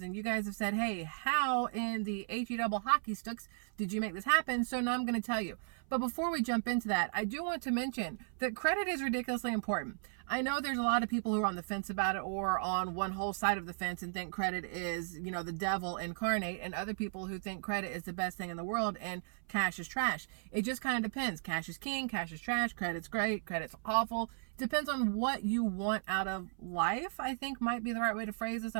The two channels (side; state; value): left; silent; 54 dB below the other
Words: and you guys have said, hey, how in the HE double hockey sticks did you make this happen? So now I'm going to tell you. But before we jump into that, I do want to mention that credit is ridiculously important. I know there's a lot of people who are on the fence about it, or on one whole side of the fence and think credit is, the devil incarnate, and other people who think credit is the best thing in the world and cash is trash. It just kind of depends. Cash is king, cash is trash, credit's great, credit's awful. Depends on what you want out of life, I think might be the right way to phrase this. I